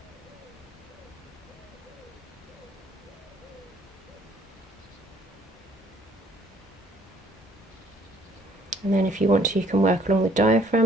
And then if you want to, you can work along the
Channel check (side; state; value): both; normal; correlation 0.61